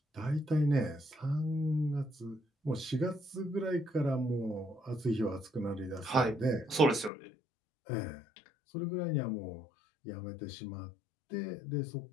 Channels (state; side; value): drops out; right; at 7.1 s